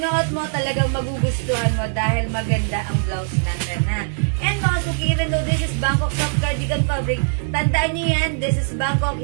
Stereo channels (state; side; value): silent; left; digital silence